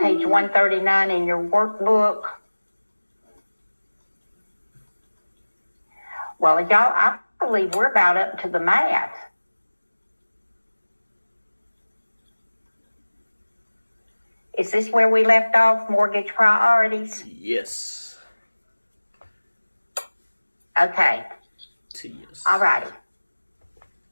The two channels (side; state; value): both; inverted; correlation -1.00